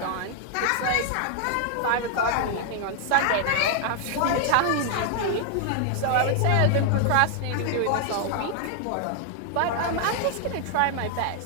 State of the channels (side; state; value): both; different; correlation 0.00